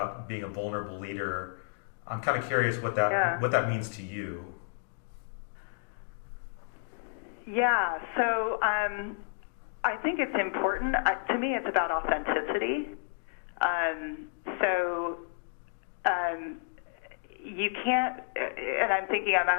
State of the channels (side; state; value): right; silent; digital silence